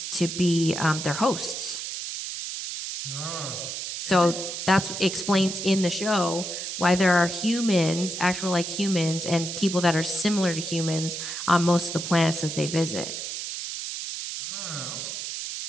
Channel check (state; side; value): noise; right; hiss, 6 dB below the sound